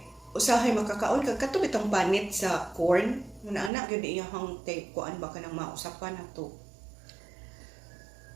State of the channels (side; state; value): left; drops out; at 3.7 s